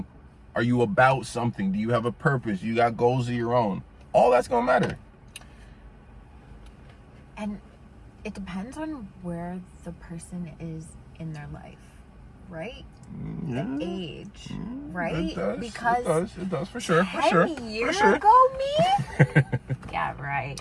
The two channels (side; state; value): both; identical; correlation 1.00